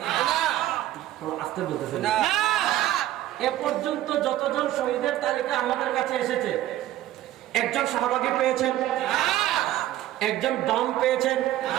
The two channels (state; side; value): quieter; left; 13.9 dB